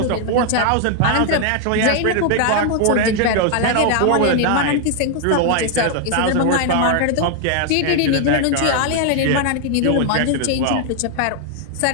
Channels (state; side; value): different; both; correlation 0.00